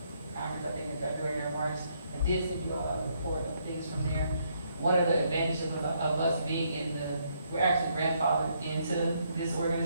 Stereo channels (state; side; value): inverted; both; correlation -0.73